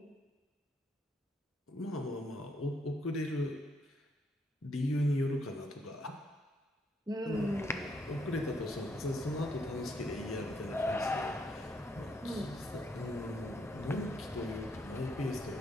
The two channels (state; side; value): normal; both; correlation 0.74